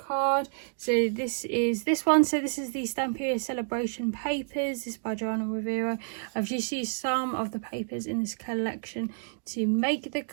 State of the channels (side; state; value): left; silent; digital silence